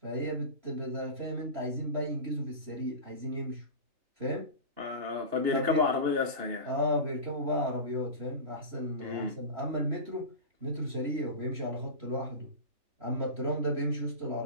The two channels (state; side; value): late; left; 2.8 ms